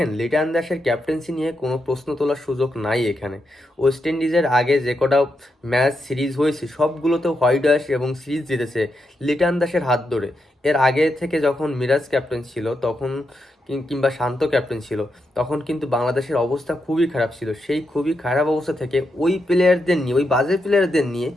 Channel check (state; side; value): normal; both; correlation 0.84